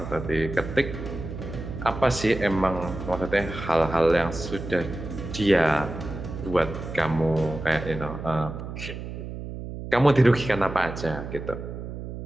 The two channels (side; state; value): right; noise; hum, 8 dB below the sound